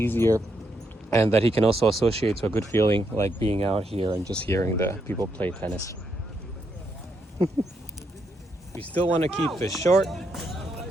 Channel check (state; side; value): normal; both; correlation 0.79